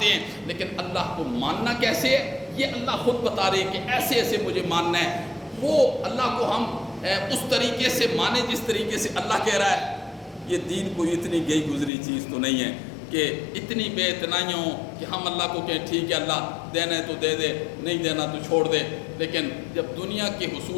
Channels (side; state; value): right; drops out; at 11.9 s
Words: ہیں، لیکن اللہ کو ماننا کیسے ہے یہ اللہ خود بتا رہے ہیں کہ ایسے ایسے مجھے ماننا ہے۔ وہ اللہ کو ہم اس طریقے سے مانیں جس طریقے سے اللہ کہہ رہا ہے۔ یہ دین کوئی اتنی گئی گزری چیز تو نہیں ہے کہ اتنی بے اتنائیاں ہوں کہ ہم اللہ کو کہیں ٹھیک ہے اللہ دینا ہے تو دے دے، نہیں دینا تو چھوڑ دے، لیکن جب دنیا کے